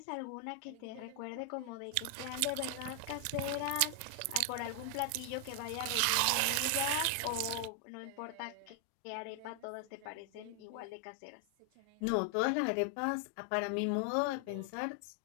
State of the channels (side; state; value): both; different; correlation 0.00